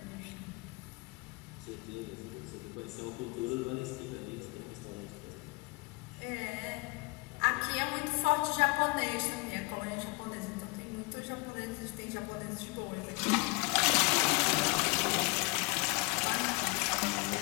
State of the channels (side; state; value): right; quieter; 27.9 dB